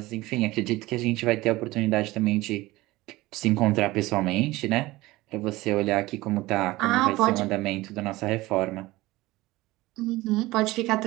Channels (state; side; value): quieter; left; 19.3 dB